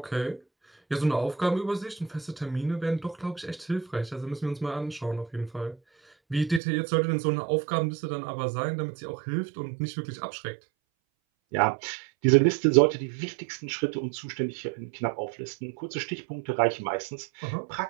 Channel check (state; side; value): drops out; left; at 6.6 s